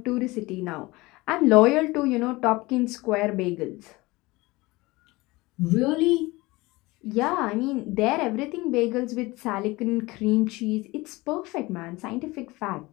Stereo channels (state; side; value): quieter; right; 21.8 dB